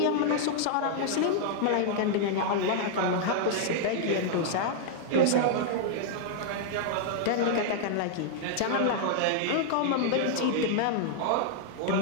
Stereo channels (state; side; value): different; both; correlation -0.01